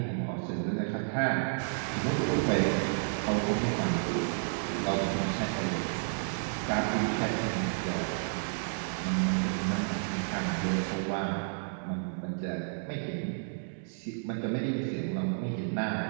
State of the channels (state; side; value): silent; left; digital silence